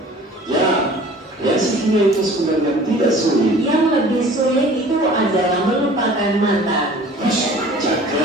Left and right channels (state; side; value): normal; both; correlation 0.47